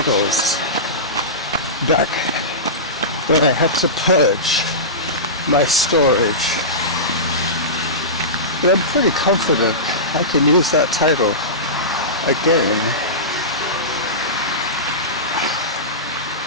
back when I had to purge my storage, but I'm pretty confident I can use that title again.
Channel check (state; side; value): normal; both; correlation -0.19